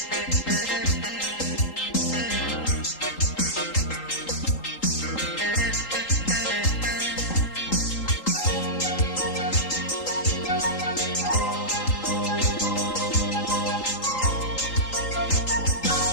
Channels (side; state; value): right; late; 3.8 ms